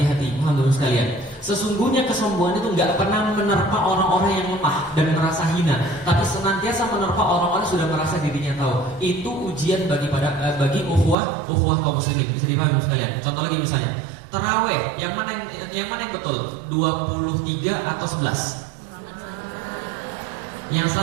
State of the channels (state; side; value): drops out; left; at 11.2 s